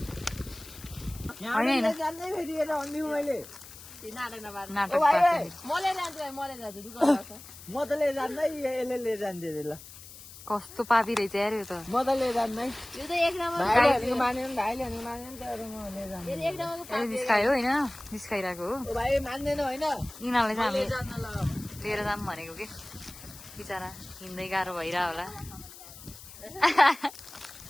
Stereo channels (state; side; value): noise; left; hiss, 17 dB below the sound